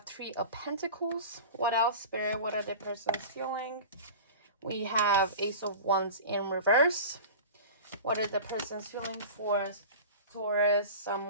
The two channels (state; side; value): inverted; both; correlation -0.34